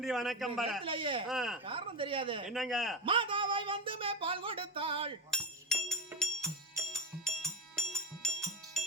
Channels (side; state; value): both; normal; correlation 0.17